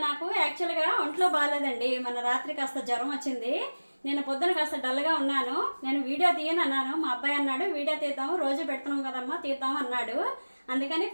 నాకు యాక్చువల్గా ఒంట్లో బాగాలేదండి. మన రాత్రి కాస్త జ్వరం వచ్చింది. నేను పొద్దున కాస్త డల్గా ఉన్నాను. నేను వీడియో తీయను అన్నాను. మా అబ్బాయి అన్నాడు వీడియో తీద్దాము, రోజు పెడుతున్నాం కదమ్మా, తీద్దాం అన్నాడు. అందుకని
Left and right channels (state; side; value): inverted; both; correlation -1.00